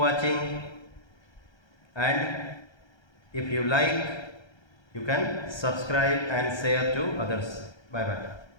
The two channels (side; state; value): right; late; 1.3 ms